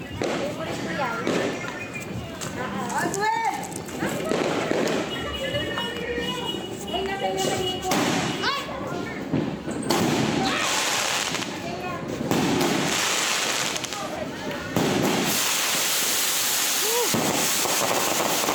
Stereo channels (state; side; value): identical; both; correlation 1.00